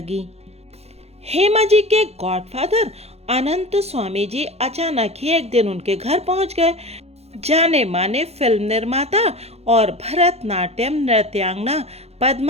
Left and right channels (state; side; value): late; left; 0.30 ms